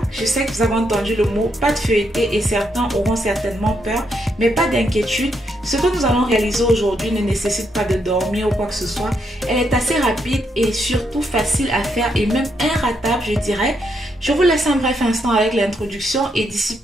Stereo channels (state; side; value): normal; both; correlation 0.78